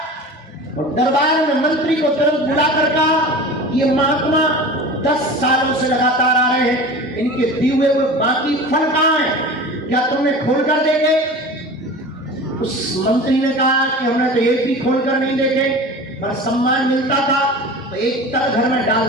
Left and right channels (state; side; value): normal; both; correlation 0.35